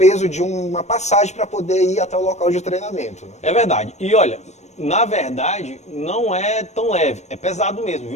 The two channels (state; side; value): late; right; 0.33 ms